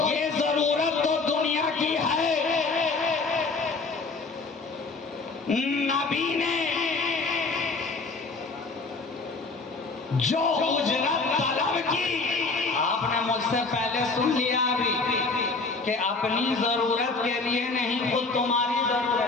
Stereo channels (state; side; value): quieter; right; 3.9 dB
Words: जरूरत तो दुनिया की है। नबी ने जो उजरत तलब की, आपने मुझसे पहले सुन लिया अभी कि अपनी जरूरत के लिए नहीं, खुद तुम्हारी